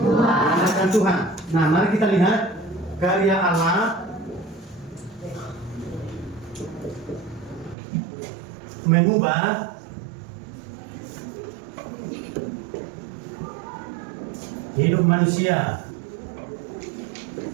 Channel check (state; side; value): drops out; left; at 7.8 s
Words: Mengandalkan Tuhan. Nah, mari kita lihat karya Allah mengubah hidup manusia,